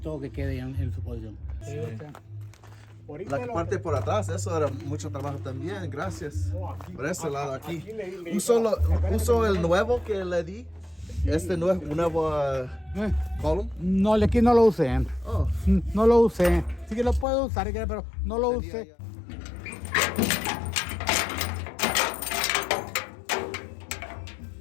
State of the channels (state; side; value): drops out; right; at 17.2 s